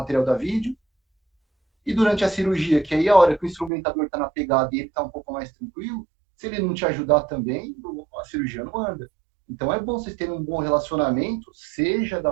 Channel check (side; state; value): left; drops out; at 3.7 s